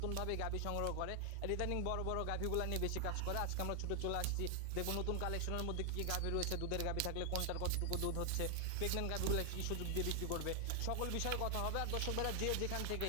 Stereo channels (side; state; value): both; different; correlation 0.00